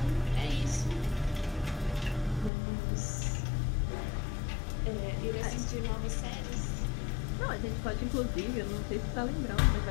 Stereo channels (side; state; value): right; drops out; at 2.5 s